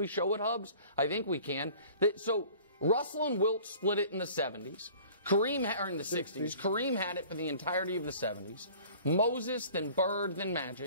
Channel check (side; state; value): both; inverted; correlation -0.48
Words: show it, Hubs? I think we can. So Russell and Wilt split it in the 70s. Kareem, or in the 60s. Kareem had it for the entirety of the 70s. Moses, then Bird, then